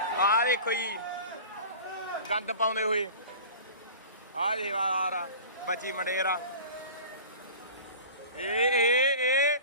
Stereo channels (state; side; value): inverted; both; correlation -0.39